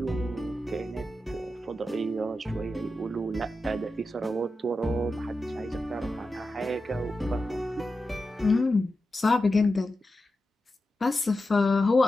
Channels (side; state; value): both; normal; correlation 0.91